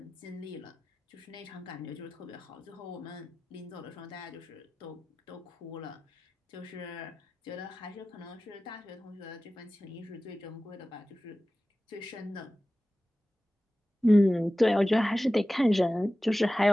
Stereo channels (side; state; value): both; normal; correlation 0.96